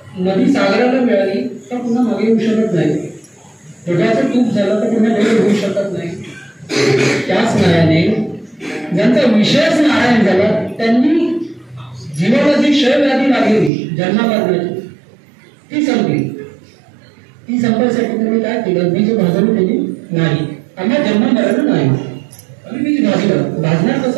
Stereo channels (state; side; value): drops out; left; at 13.7 s